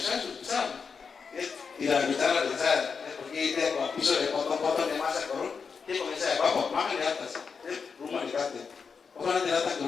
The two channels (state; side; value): quieter; right; 5.6 dB